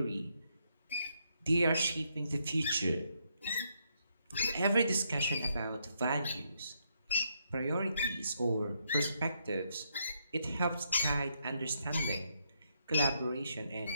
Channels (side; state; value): both; inverted; correlation -0.77